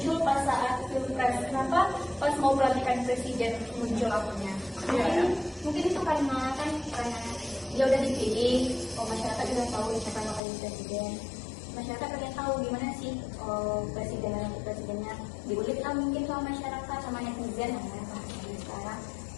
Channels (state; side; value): drops out; right; at 10.4 s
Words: pas saat pilpres? Kenapa pas mau pelantikan presiden muncul akunnya? Iya, ya. Mungkin itu karena dia udah dipilih, masyarakat udah tahu siapa yang bakal jadi presiden. Masyarakat pengen tahu gimana sih presiden dan wakil presidennya. Diulik lah mungkin sama masyarakat, sama netizen sekarang.